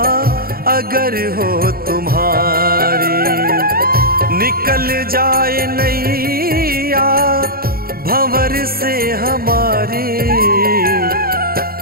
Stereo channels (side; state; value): left; late; 0.43 ms